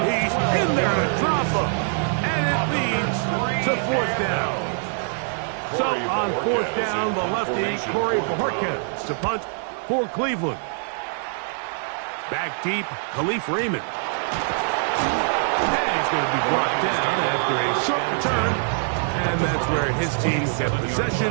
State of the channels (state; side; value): silent; left; 61 dB below the other